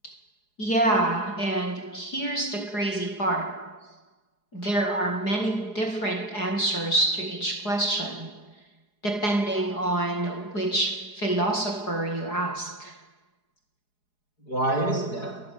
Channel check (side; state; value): right; late; 4.8 ms